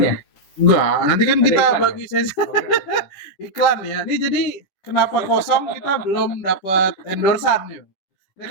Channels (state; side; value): late; right; 10 ms